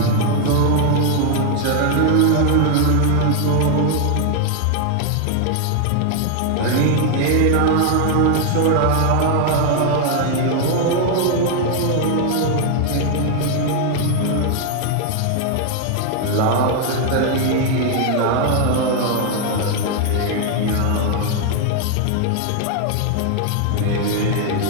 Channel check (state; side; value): different; both; correlation 0.00